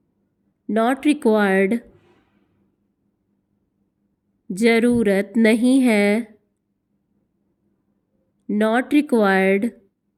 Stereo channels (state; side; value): identical; both; correlation 1.00